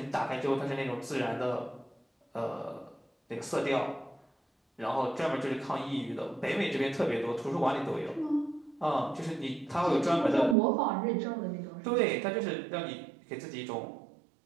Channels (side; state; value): left; drops out; at 10.6 s